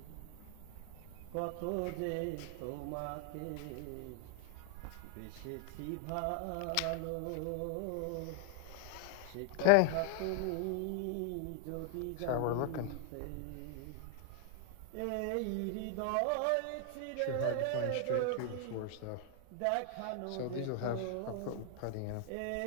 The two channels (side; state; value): both; different; correlation 0.00